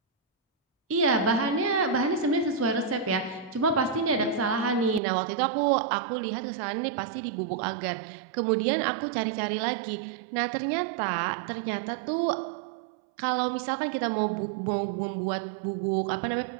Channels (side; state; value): left; drops out; at 5.0 s